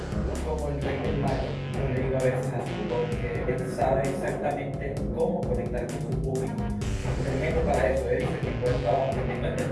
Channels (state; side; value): identical; both; correlation 1.00